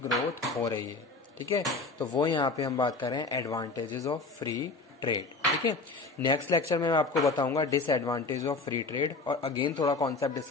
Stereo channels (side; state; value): right; quieter; 3.7 dB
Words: ग्रोथ हो रही है, ठीक है। तो वो यहाँ पे हम बात कर रहे हैं एडवांटेजेस ऑफ फ्री ट्रेड, ठीक है। नेक्स्ट लेक्चर में मैं आपको बताऊंगा डिसएडवांटेज ऑफ फ्री ट्रेड, और अगेन थोड़ा कॉन्सेप्ट